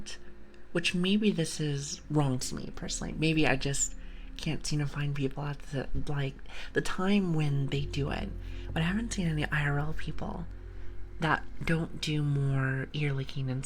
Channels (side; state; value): both; identical; correlation 1.00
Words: which maybe this is wrong to me personally. Maybe I just can't seem to find people at the time when they do it. But I haven't seen any IRL people that don't do more ear licking and